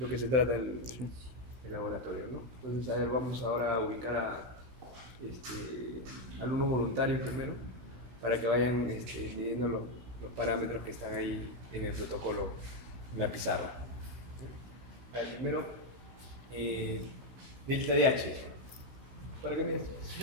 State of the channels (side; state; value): left; late; 16 ms